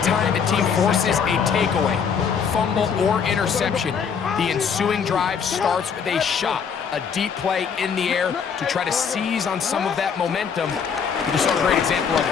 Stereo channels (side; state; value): right; quieter; 6.7 dB